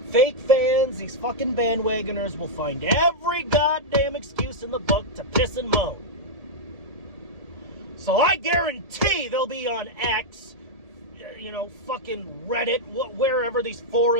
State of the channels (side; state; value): left; late; 1.8 ms